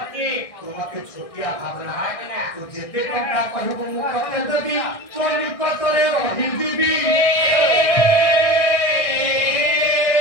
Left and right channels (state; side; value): late; right; 1.6 ms